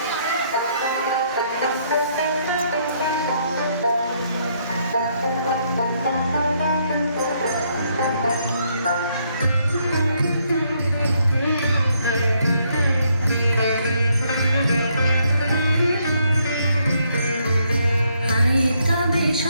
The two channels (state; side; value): inverted; both; correlation -0.72